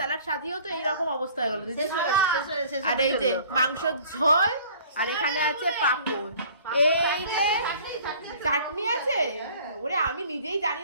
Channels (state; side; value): inverted; both; correlation -0.51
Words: সাজিয়েও তো এইরকম অবস্থা হয়ে গেল। আর এই যে মাংসর ঝোল, আর এখানে আছে পাঁপড়, এই যে চাটনি আছে। ওরে আমি নিজেই জানি